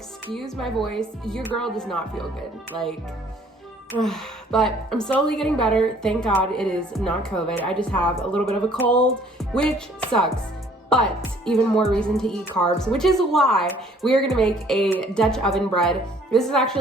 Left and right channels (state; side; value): normal; both; correlation 0.58